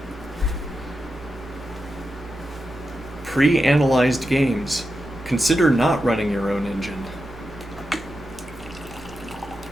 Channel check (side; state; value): both; normal; correlation 0.88